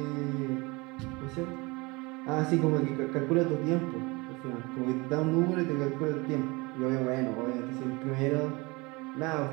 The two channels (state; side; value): quieter; left; 25.5 dB